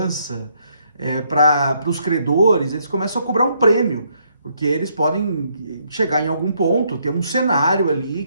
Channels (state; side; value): inverted; both; correlation -0.72